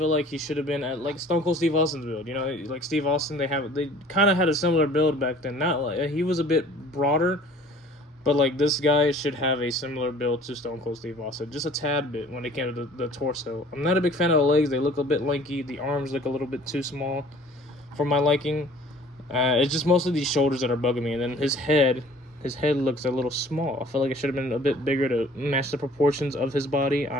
like he should have been at like Stone Cold Steve Austin's build. You know, like Steve Austin, they kind of had a similar build back then. Not like he was a bit broader, but like this guy should have a similar build to Stone Cold Steve Austin, just a tad bit when it came to the torso. I'm not a big fan of the legs. They look a bit lanky. The arms look a little bit too small for my liking. It's just mostly these shoulders that are bugging me, and then his head looks a little small. I feel like it should have been a bit bigger to match the proportions of his body. I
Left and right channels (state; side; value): normal; both; correlation 0.51